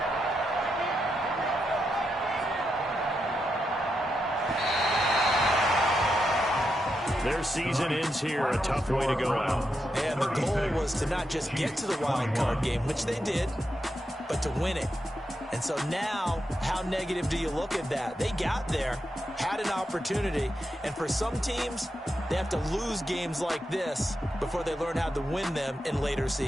Their season ends here. A tough way to go out. And the goal was to not just get to the wild card game, which they did, but to win it. And so now, how negative do you look at that? They got there, had an opportunity, and for some teams, they have to lose games like this before they learn how to win them in later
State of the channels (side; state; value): both; normal; correlation 0.85